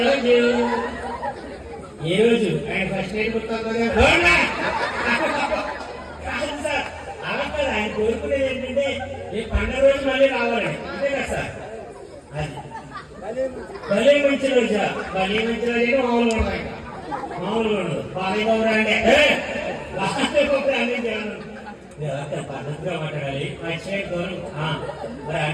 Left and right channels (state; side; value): identical; both; correlation 1.00